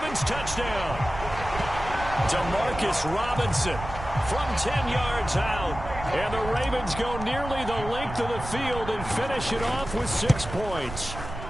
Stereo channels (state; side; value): noise; right; rumble, 10 dB below the sound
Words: touchdown. Demarcus Robinson from 10 yards out. And the Ravens go nearly the length of the field and finish it off with 6 points.